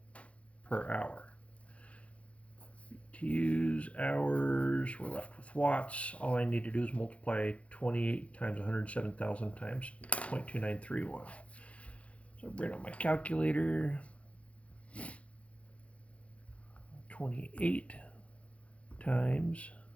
per hour. BTUs, hours, we're left with watts. All I need to do is multiply 28 times 107,000 times 0.2931. So bring up my calculator. 28 times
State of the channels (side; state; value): right; late; 0.063 ms